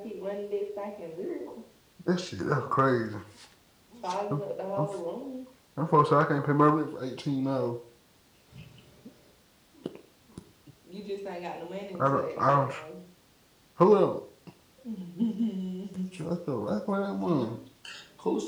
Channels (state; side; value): identical; both; correlation 1.00